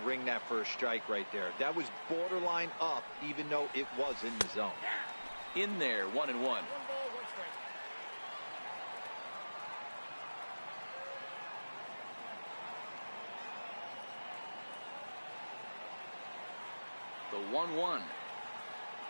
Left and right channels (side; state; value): both; inverted; correlation -1.00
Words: ring that first strike right there. That was borderline up, even though it was in the zone. in there, 1-1. One ball, one strike. The 1-1.